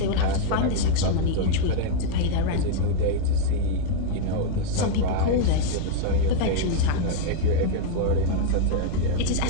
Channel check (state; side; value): different; both; correlation -0.01